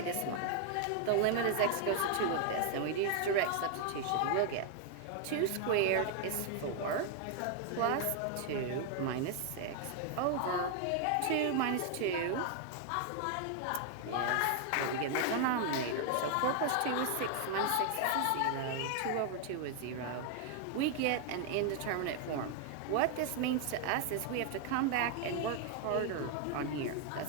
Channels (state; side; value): different; both; correlation 0.00